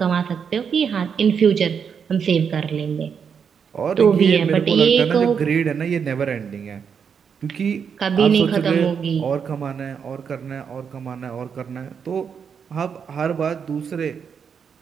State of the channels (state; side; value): quieter; left; 6.8 dB